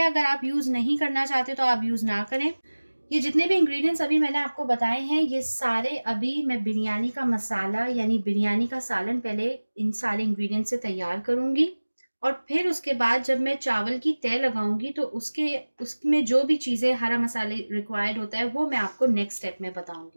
अगर आप यूज़ नहीं करना चाहते तो आप यूज़ ना करें। ये जितने भी इंग्रेडिएंट्स अभी मैंने आपको बताए हैं, ये सारे अभी मैं बिरयानी का मसाला यानी बिरयानी का सालन पहले इन सारे इंग्रेडिएंट से तैयार करूँगी। और फिर उसके बाद जब मैं चावल की तय लगाऊंगी तो उसमें जो भी चीज़ें हरा मसाले रिक्वायर्ड होता है वो मैं आपको नेक्स्ट स्टेप में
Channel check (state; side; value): inverted; both; correlation -1.00